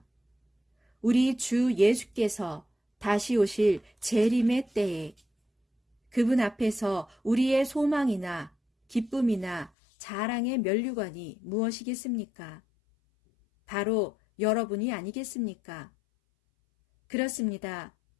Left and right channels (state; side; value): drops out; right; at 9.7 s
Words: 우리 주 예수께서 다시 오실 재림의 때에 그분 앞에서 우리의 소망이나 기쁨이나 자랑의 면류관이 무엇이겠습니까? 바로 여러분이 아니겠습니까? 그렇습니다.